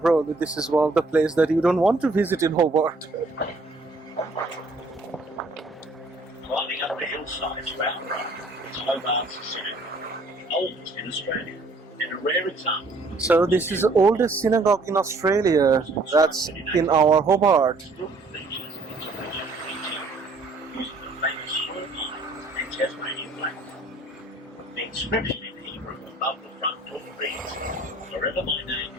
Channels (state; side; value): quieter; left; 3.1 dB